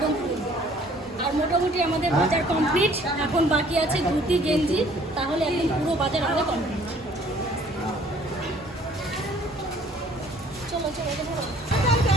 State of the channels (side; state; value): both; normal; correlation 0.57